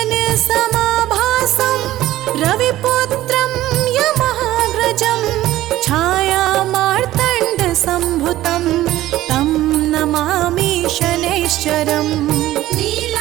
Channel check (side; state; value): left; quieter; 15.0 dB